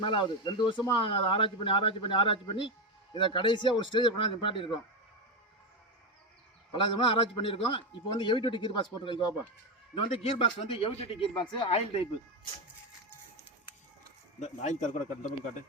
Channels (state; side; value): normal; both; correlation 0.11